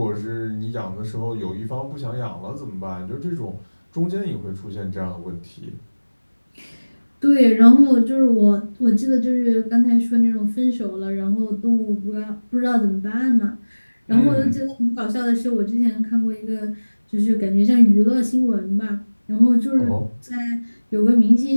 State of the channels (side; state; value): both; inverted; correlation -1.00